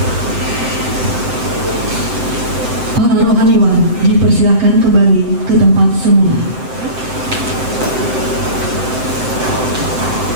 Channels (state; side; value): late; left; 7.8 ms